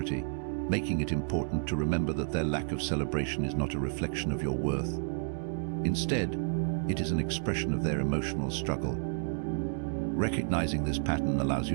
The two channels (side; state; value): left; silent; digital silence